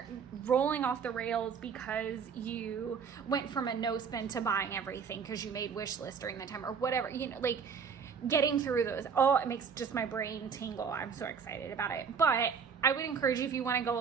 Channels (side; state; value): left; quieter; 6.4 dB